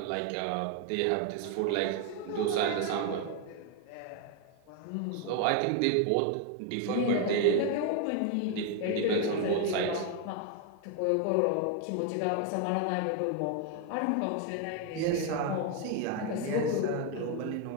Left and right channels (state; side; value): different; both; correlation 0.01